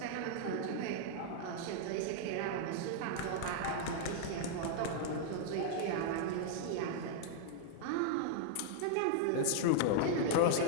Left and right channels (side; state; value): both; different; correlation -0.01